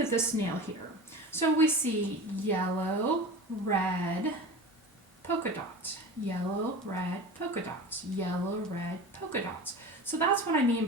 this snail here. So we see yellow, red, polka dots, yellow, red, polka dots, yellow, red, polka dots. So that's what I mean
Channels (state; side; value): normal; both; correlation 0.33